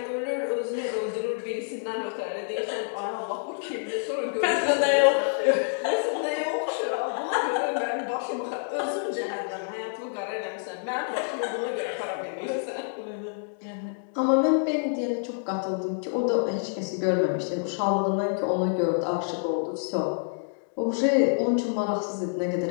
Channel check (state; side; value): silent; right; digital silence